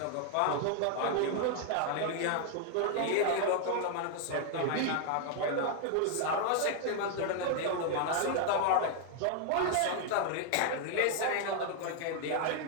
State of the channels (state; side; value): different; both; correlation 0.00